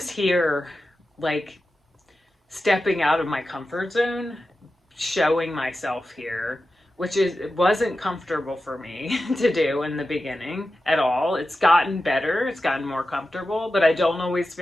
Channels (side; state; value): both; normal; correlation 0.92